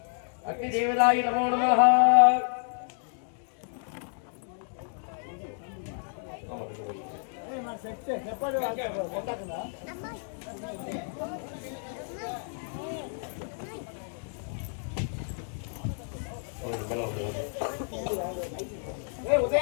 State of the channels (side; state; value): right; silent; 58 dB below the other